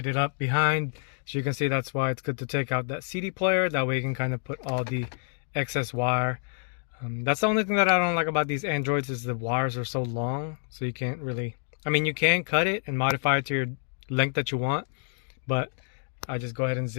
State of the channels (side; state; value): right; silent; 59 dB below the other